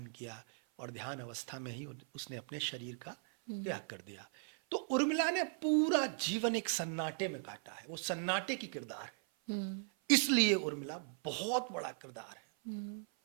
किया, और ध्यान अवस्था में ही उसने अपने शरीर का हुँ, त्याग कर दिया। तो उर्मिला ने पूरा जीवन एक सन्नाटे में काटा है, वो सन्नाटे की किरदार है। हुँ, इसलिए उर्मिला बहुत बड़ा किरदार है। हुँ,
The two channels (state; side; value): silent; left; 52 dB below the other